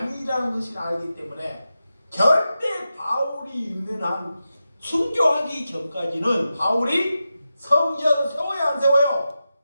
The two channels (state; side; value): inverted; both; correlation -0.91